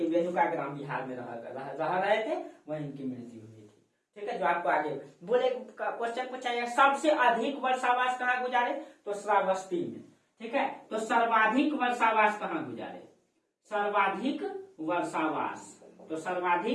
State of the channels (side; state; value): both; identical; correlation 1.00